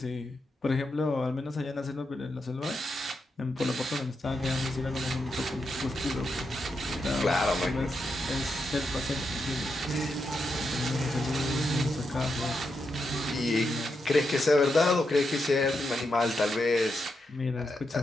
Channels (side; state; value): both; normal; correlation 0.84